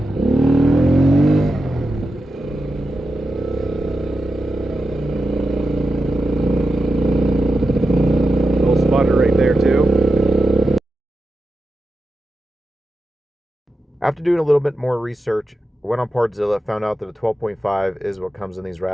After doing a little bit more research, I went on Partzilla, found out that a 12.5 is what comes in these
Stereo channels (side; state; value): both; normal; correlation 0.90